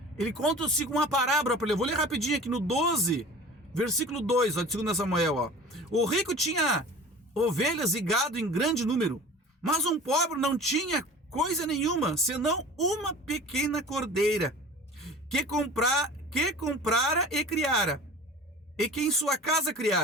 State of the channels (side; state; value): both; normal; correlation 0.40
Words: Ele conta-se uma parábola para ele. Eu vou ler rapidinho aqui no 12, versículo 2, ó, de 2 Samuel, ó. O rico tinha ovelhas e gado em grande número, mas um pobre não tinha coisa nenhuma, senão uma pequena cordeira, que comprara e criara, e que em sua casa